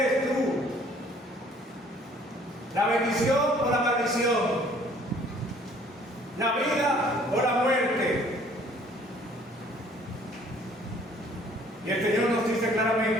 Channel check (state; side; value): normal; both; correlation 0.57